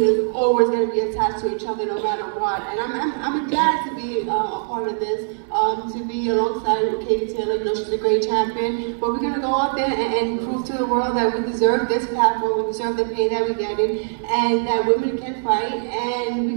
is always going to be attached to each other no matter what. And I'm glad to be a part of this, to be alongside with Katie Taylor. You know, she's a great champion. But we're going to go out there and prove to the world that we deserve this platform, we deserve the pay that we're getting, and that women can fight. And we're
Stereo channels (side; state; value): left; silent; digital silence